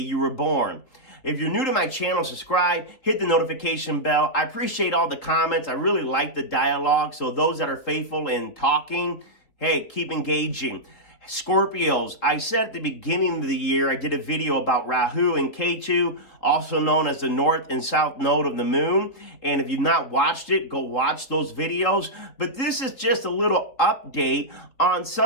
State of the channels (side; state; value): right; late; 3.7 ms